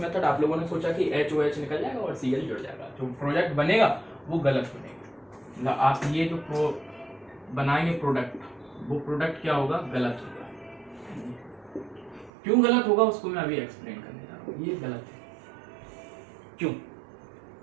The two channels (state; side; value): drops out; left; at 12.3 s